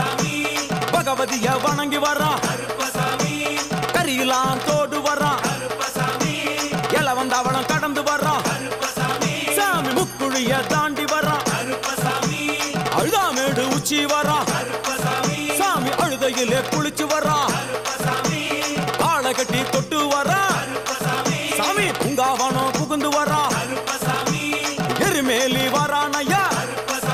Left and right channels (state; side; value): noise; right; hum, 28 dB below the sound